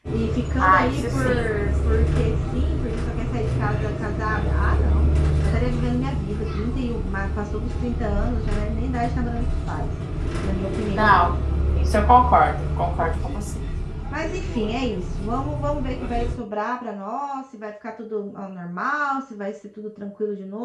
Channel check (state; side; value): identical; both; correlation 1.00